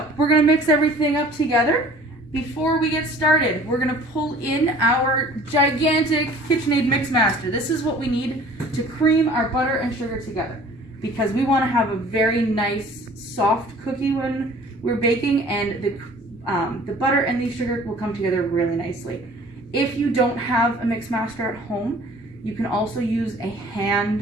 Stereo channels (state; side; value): normal; both; correlation 0.49